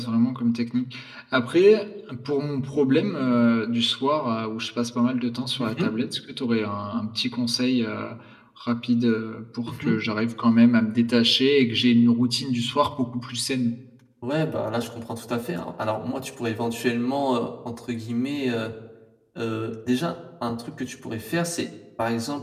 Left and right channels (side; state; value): both; identical; correlation 1.00